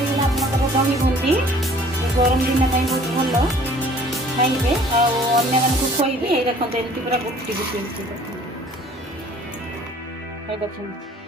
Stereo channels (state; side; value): normal; both; correlation 0.53